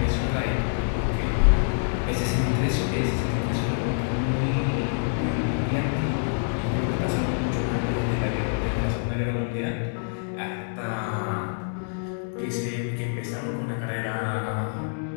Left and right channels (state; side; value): silent; right; digital silence